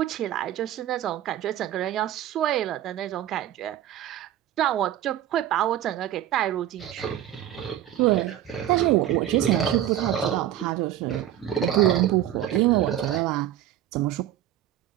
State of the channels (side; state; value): left; quieter; 12.0 dB